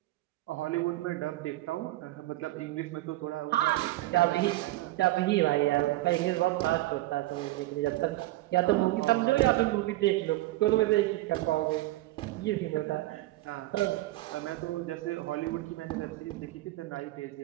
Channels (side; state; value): left; quieter; 17.5 dB